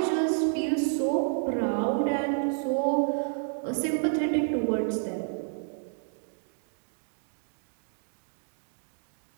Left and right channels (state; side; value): silent; left; digital silence